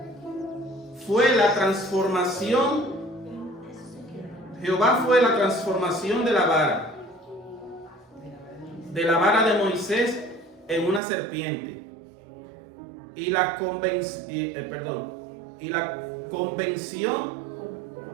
fue la transformación. Jehová fue la transformación de la vara de Moisés en una serpiente. Y la convención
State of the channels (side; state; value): left; drops out; at 11.0 s